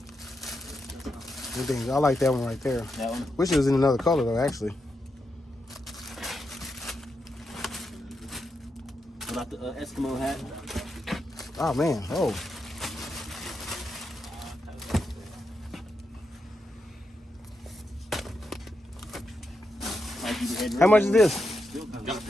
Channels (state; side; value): normal; both; correlation 0.84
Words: I like that one right there. That one? Wish it was in another color though, actually. What about the Eskimo hat? Oh man, oh. How much is this?